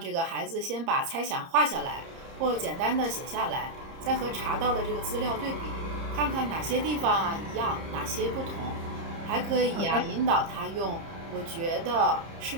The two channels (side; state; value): left; late; 30 ms